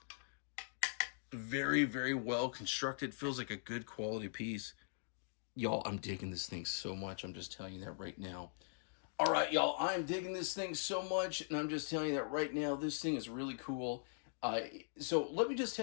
Very, very well constructed. Feels like a good quality piece. Y'all, I'm digging this thing so much. I'm just telling you that right now. All right, y'all, I'm digging this thing so much, and I'm just telling you that right now. This thing is really cool. So let me just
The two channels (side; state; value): right; silent; digital silence